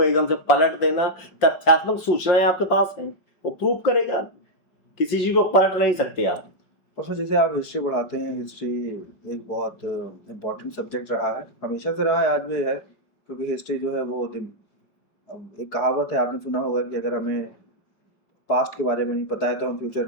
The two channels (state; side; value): late; right; 5.6 ms